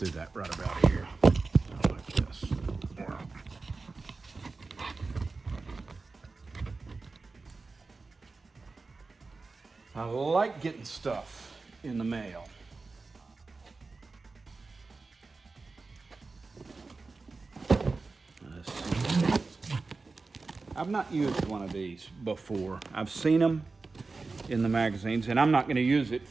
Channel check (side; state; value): left; quieter; 3.9 dB